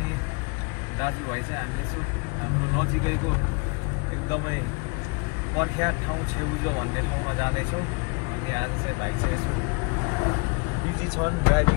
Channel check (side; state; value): right; quieter; 31.0 dB